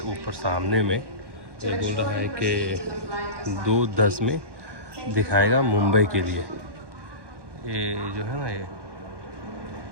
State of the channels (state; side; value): late; left; 1.1 ms